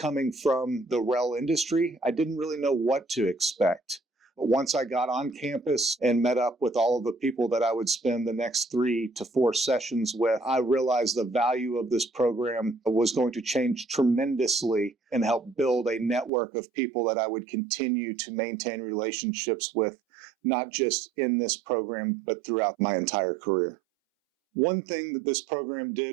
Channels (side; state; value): left; drops out; at 16.3 s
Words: from the rail industry, I didn't really know what to expect. But once I got on campus and met up with all of the people that I would spend the next 3 to 4 sessions with, I realized the value of this program was going to change tremendously and help build a network of people that I would continue to maintain relationships with, not just in this program, but throughout my entire career. One thing that this program